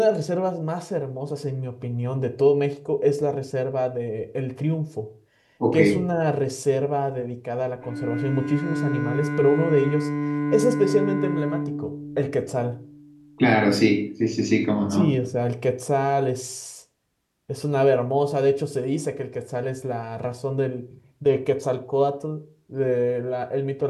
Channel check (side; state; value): both; identical; correlation 1.00